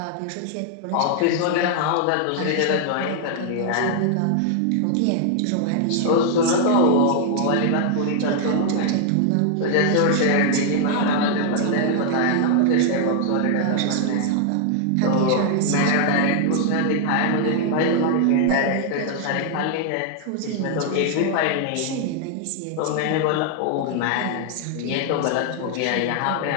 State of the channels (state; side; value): different; both; correlation -0.01